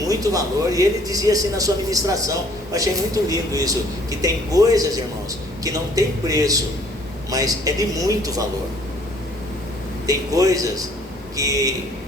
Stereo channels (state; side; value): normal; both; correlation 0.59